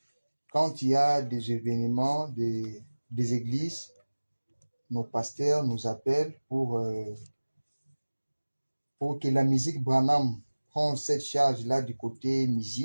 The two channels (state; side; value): inverted; both; correlation -1.00